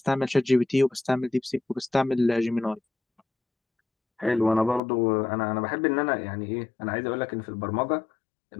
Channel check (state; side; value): drops out; right; at 4.8 s